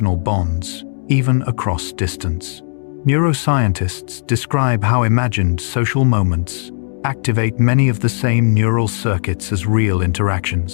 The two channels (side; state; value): right; silent; 68 dB below the other